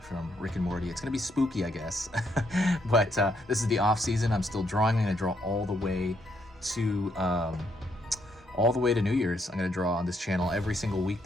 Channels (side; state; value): both; normal; correlation 0.74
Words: from Rick and Morty. It's gonna be spooky, I guess. But this is the off season. I'm still drawing. I'm gonna draw all the way to New Year's. I'm gonna draw on this channel every single